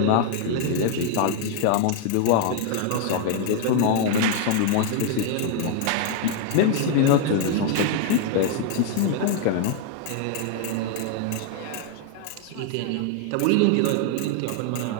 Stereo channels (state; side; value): different; both; correlation 0.00